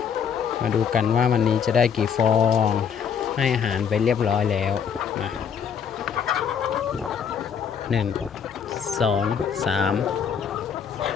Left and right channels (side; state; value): right; quieter; 7.3 dB